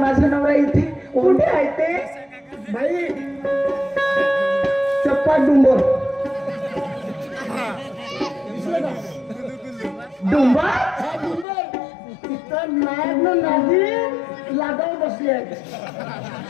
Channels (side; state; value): right; drops out; at 11.5 s